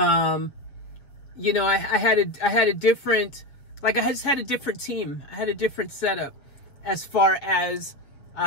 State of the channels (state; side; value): late; right; 7.1 ms